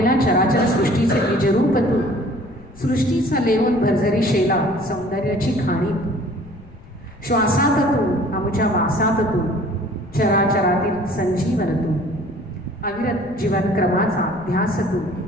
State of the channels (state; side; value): noise; left; rumble, 21 dB below the sound